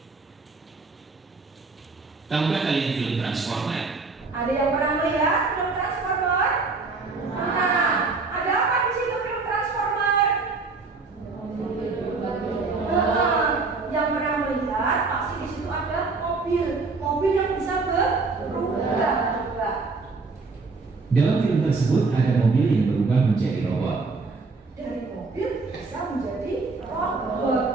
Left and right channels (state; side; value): quieter; left; 4.0 dB